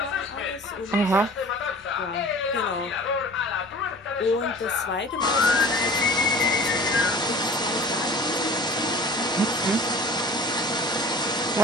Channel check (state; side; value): normal; both; correlation 0.43